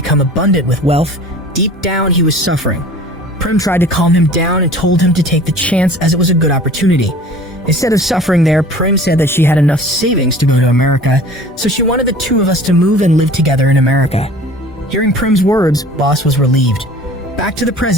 abundant with wealth, deep down he was suffering. Prim tried to calm him down and told him to take the chance as it was a good opportunity. Instead of suffering there, Prim said that she had enough savings to go to America, so she wanted the two of us to move and live together in America. Hearing Prim's words, Boss was relieved. Back to the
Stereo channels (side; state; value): both; normal; correlation 0.45